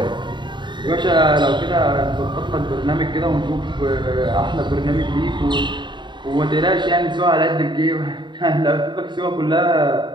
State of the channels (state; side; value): late; left; 0.23 ms